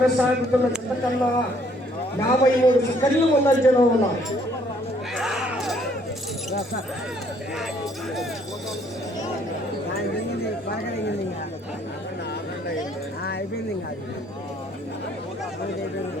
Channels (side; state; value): both; normal; correlation 0.64